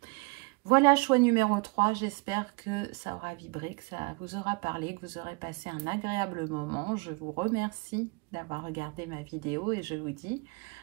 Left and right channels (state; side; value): quieter; left; 29.2 dB